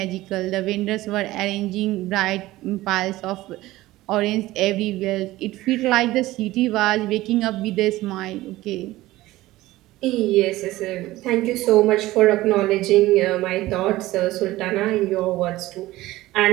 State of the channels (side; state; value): left; quieter; 17.2 dB